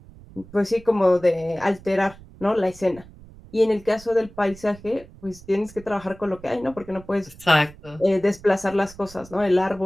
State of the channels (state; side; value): noise; right; rumble, 20 dB below the sound